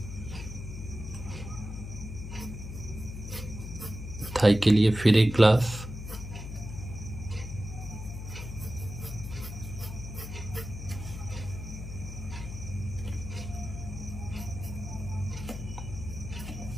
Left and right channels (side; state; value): left; noise; hum, 8 dB below the sound